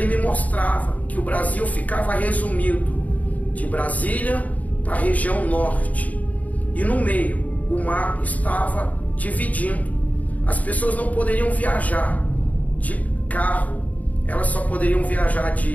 me mostrava que o Brasil ficava resumido de Brasília para a região norte. E no meio, o mar estava dividindo. As pessoas não poderiam viajar de carro, elas só poderiam viajar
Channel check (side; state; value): right; late; 0.072 ms